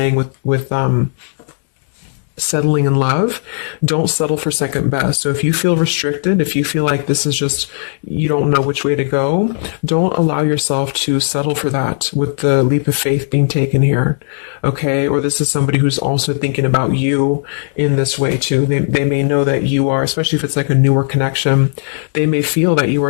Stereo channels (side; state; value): right; silent; digital silence